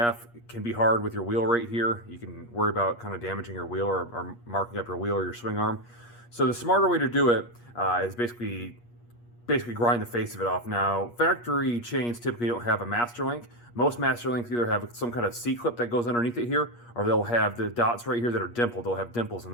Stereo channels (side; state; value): right; late; 8.4 ms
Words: can be hard with your wheel right here. You can worry about kind of damaging your wheel or marking up your wheel or your swing arm. So the smarter way to do it is basically grind the face of it off. Now, factory chains typically don't have a master link. Most master links either have some kind of C-clip that goes underneath it here, or they'll have the dots right here that are dimpled. They'll have dimples in